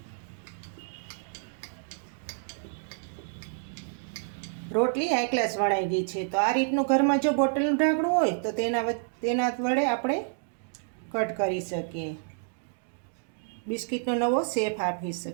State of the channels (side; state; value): left; silent; digital silence